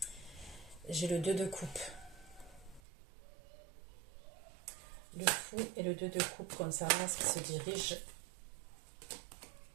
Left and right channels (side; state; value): left; drops out; at 2.8 s